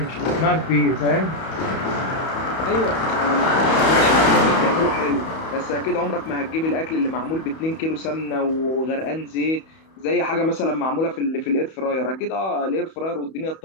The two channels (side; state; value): right; late; 31 ms